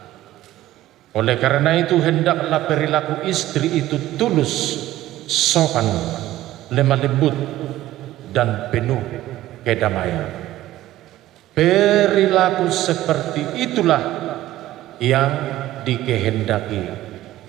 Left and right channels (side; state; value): left; quieter; 14.8 dB